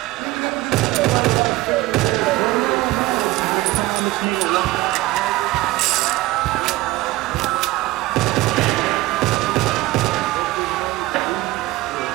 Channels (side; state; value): left; quieter; 18.8 dB